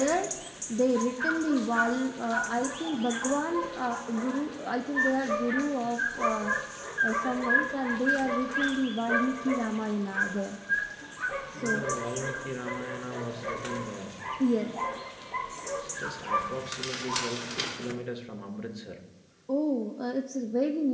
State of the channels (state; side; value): identical; both; correlation 1.00